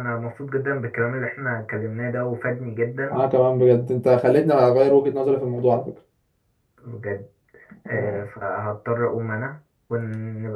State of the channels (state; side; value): identical; both; correlation 1.00